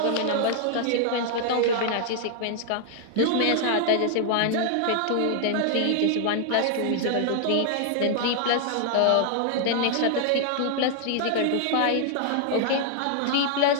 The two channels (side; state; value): both; different; correlation 0.00